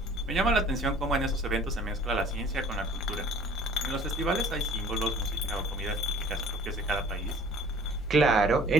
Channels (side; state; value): both; normal; correlation 0.51